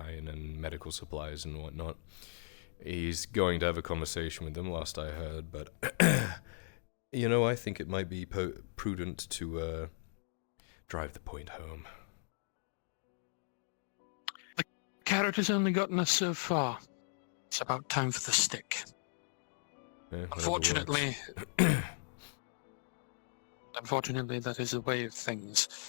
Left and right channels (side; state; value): right; silent; digital silence